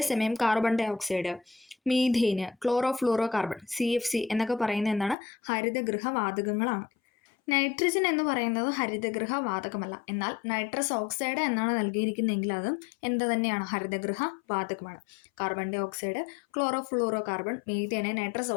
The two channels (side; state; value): right; drops out; at 5.2 s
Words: carbon dioxide, methane, chlorofluorocarbon, CFC എന്നൊക്കെ പറയുന്നത് എന്താണ്? ഹരിതഗൃഹ വാതകങ്ങളാണ്. നൈട്രജൻ എന്ന് പറയുന്നത് ഹരിതഗൃഹ വാതകമല്ല. എന്നാൽ നൈട്രസ് ഓക്സൈഡ് എന്നാണ് നൽകിയിരിക്കുന്നതെങ്കിൽ അതും എന്ത് തന്നെയാണ്? ഹരിതഗൃഹ വാതകമാണ്. Carbon dioxide, chlorofluorocarbon, methane, nitrous